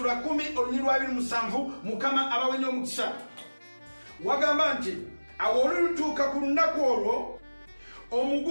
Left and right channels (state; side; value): inverted; both; correlation -1.00